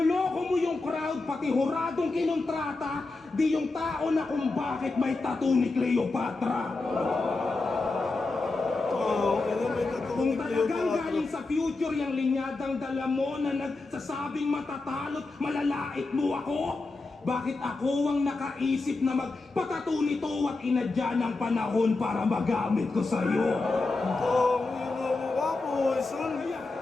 mo yung crowd, pati huradong kinontrata. Di yung tao na kung bakit may tattoo ni Cleopatra. Kung talagang galing sa future yung linyadang dala mo na nagsasabing matatalot, malalait mo ako? Bakit ako ang nakaisip na magpatato nito at inadya ng panahon para magamit ko sa'yo?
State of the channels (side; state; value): right; quieter; 3.5 dB